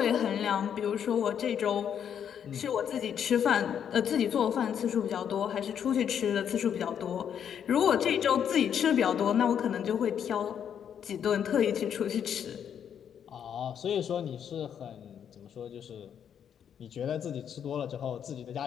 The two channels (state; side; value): quieter; right; 8.5 dB